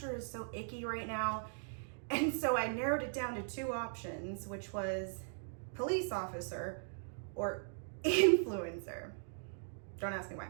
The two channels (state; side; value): silent; left; digital silence